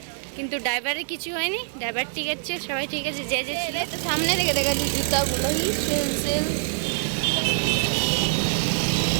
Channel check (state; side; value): silent; left; digital silence